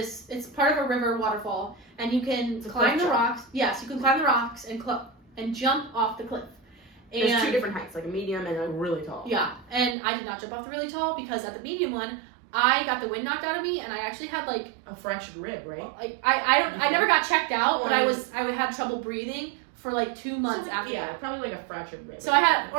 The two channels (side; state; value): left; drops out; at 10.0 s